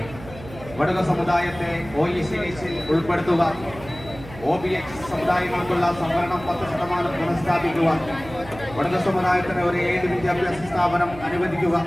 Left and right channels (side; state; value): right; noise; hum, 16 dB below the sound